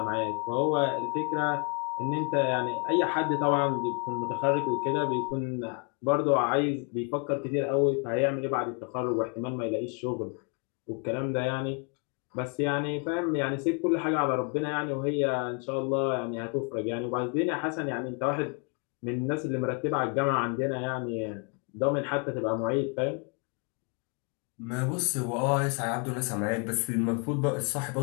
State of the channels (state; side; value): quieter; right; 36.5 dB